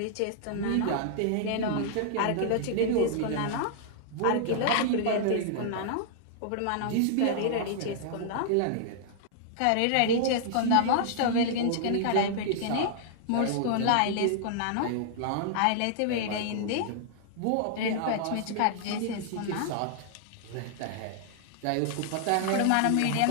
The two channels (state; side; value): different; both; correlation -0.01